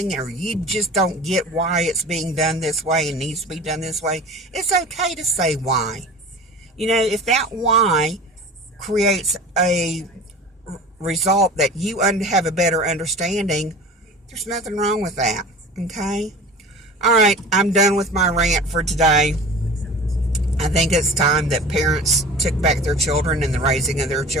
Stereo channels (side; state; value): both; normal; correlation 0.38